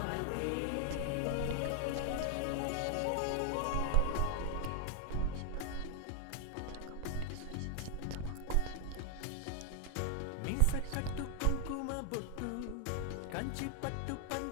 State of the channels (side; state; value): both; different; correlation 0.01